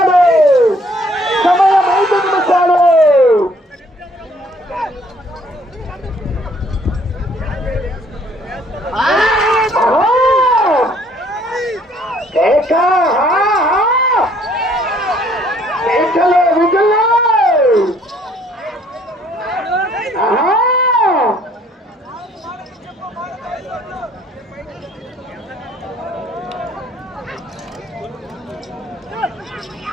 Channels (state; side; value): normal; both; correlation 0.62